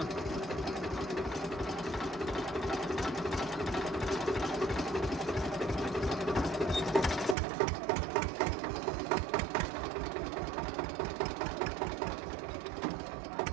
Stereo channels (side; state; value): left; drops out; at 7.4 s